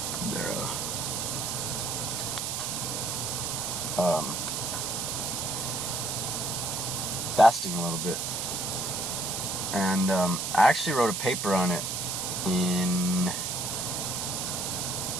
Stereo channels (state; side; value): noise; right; hiss, 2 dB below the sound